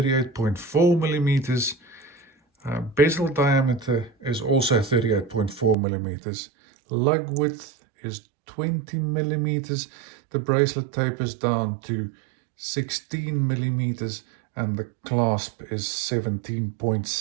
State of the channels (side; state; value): left; drops out; at 5.8 s